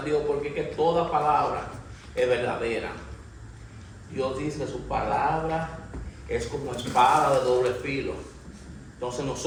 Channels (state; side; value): identical; both; correlation 1.00